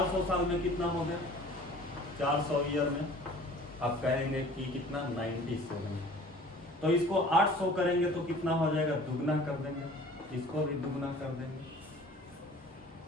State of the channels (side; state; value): both; normal; correlation 0.47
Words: साल में कितना हो गया, 400 ईयर में आप कहेंगे कि कितना, 97। तो इसको 800 करेंगे तो कितना हो जाएगा, दुगना कर देंगे, इसको भी दुगना कर देंगे।